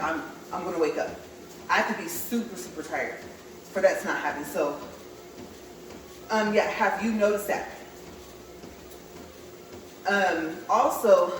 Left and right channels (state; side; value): identical; both; correlation 1.00